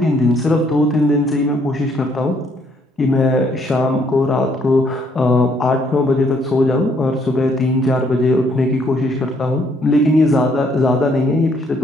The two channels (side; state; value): both; normal; correlation 0.68